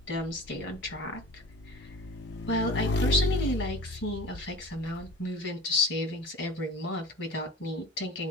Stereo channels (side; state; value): both; normal; correlation 0.38